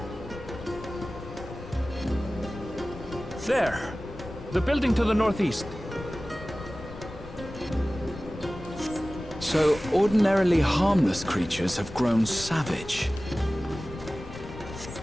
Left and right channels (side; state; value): both; normal; correlation 0.97